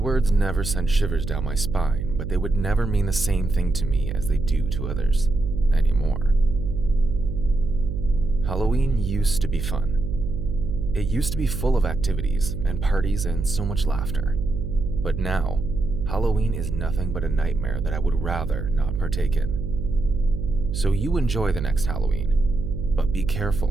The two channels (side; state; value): right; noise; hum, 4 dB below the sound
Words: never sent shivers down my spine, but they would never mean the same thing to me as they do to others anymore. Halloween used to be fun. It used to be full of activities and parties and so much laughter. But now, Halloween is nothing but a nightmare that I would rather not partake in. So you enjoy the next Halloween, but be